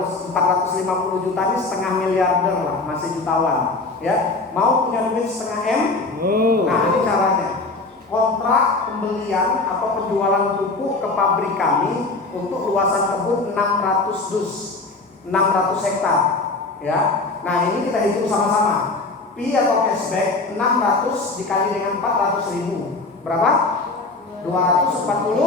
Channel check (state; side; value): quieter; right; 3.5 dB